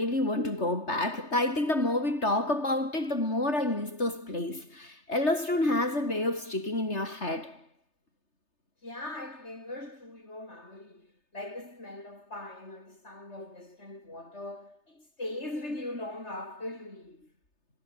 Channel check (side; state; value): right; late; 3.3 ms